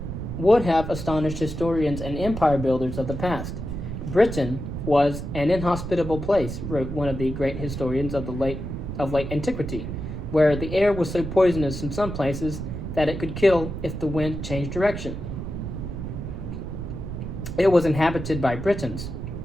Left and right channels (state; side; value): noise; right; rumble, 6 dB below the sound